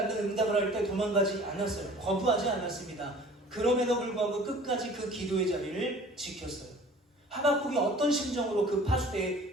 응답을 할 때 도망가지 않았어요. 거부하지 않았습니다. 그럼에도 불구하고 끝까지 그 기도의 자리를 지켰어요. 하박국이 어떤 심정으로 그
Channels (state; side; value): normal; both; correlation 0.47